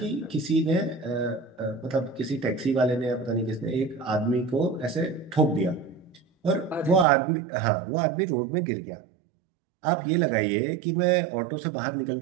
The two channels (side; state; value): left; drops out; at 7.1 s